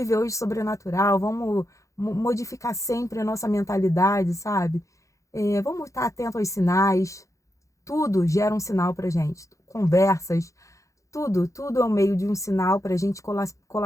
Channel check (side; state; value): right; late; 0.15 ms